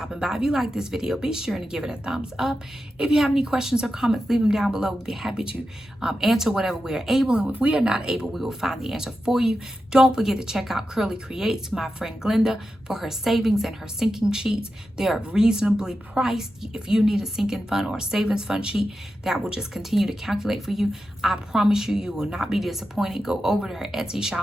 by. If you like this video, be sure to give it a thumbs up. If you have any questions or comments, leave them down below. We'll be happy to answer whatever we are able. And if we are not able, we will find the answer for you. Don't forget to check out Curly Creates, my friend Glenda, for her savings and her sinking sheets. They are reasonably priced. If you need a sinking fund or a savings fund sheet that will just continue to calculate for you, I promise you, you will not be disappointed. Go over to her Etsy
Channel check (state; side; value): normal; both; correlation 0.90